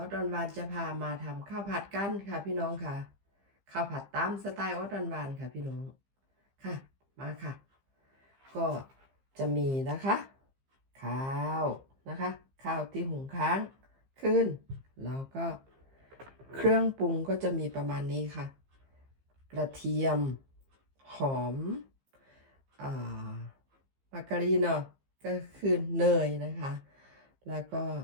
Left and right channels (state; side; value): late; left; 15 ms